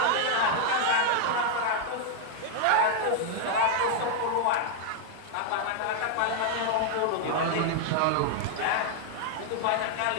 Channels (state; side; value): different; both; correlation 0.00